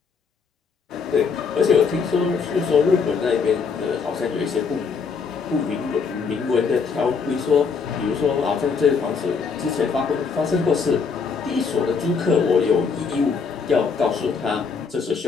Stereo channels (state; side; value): quieter; right; 5.4 dB